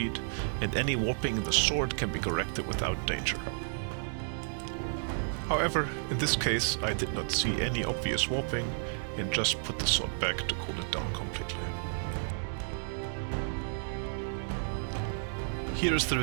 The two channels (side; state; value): left; silent; digital silence